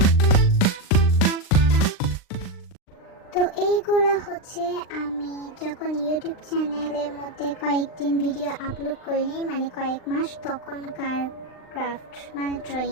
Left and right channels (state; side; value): late; right; 39 ms